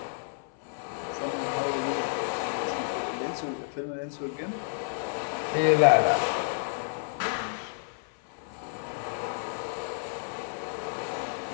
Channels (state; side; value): silent; right; 58 dB below the other